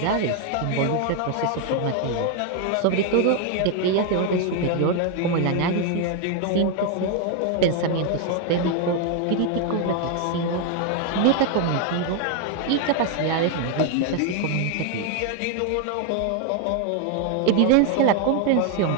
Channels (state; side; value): different; both; correlation 0.00